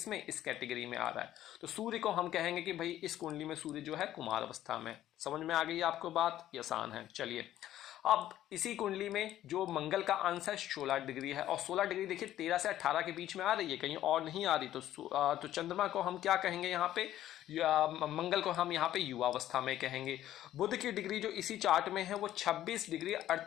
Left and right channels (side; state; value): right; quieter; 12.8 dB